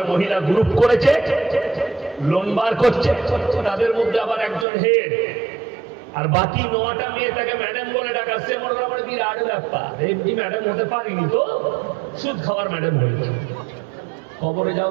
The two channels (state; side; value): drops out; left; at 4.7 s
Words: মহিলা গ্রুপ করেছে, লোন বার করছে, তাদের মধ্যে আবার একজন হেড, আর বাকি 9টা মেয়ে তাকে ম্যাডাম বলে ডাকাচ্ছে। মনে করা মানে বিরাট ব্যাপার, এমনি ম্যাডাম হতে পারিনি তো, সুদ খাওয়ার ম্যাডাম হয়েছে। খবরে যাও,